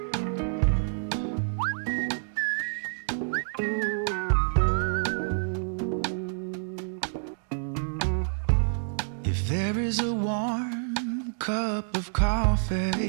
If there is a warm cup of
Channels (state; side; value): silent; left; digital silence